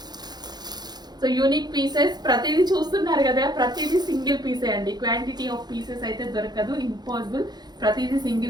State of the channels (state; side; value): late; left; 0.20 ms